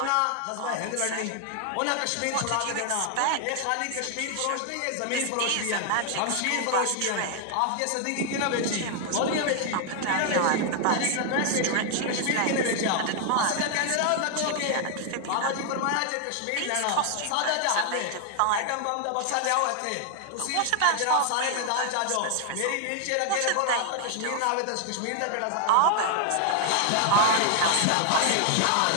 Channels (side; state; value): both; different; correlation 0.00